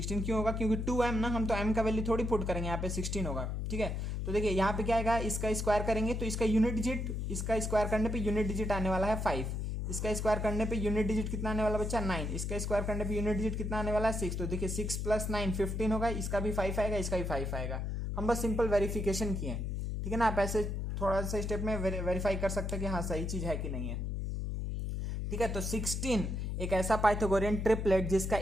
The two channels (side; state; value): left; noise; hum, 2 dB below the sound